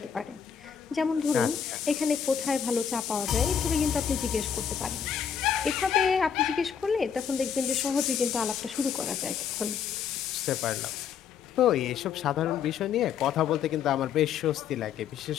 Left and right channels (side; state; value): right; quieter; 7.6 dB